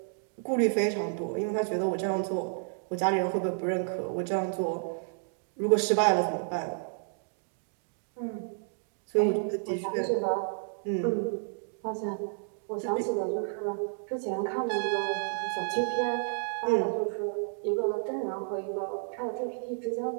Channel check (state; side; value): silent; left; digital silence